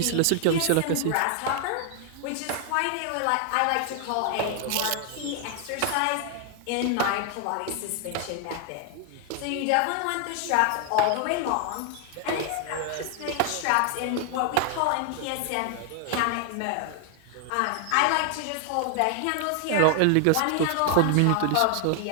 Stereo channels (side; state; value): both; different; correlation 0.00